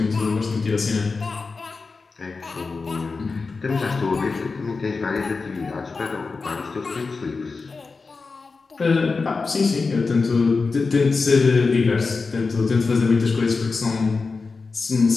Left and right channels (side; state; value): right; quieter; 4.3 dB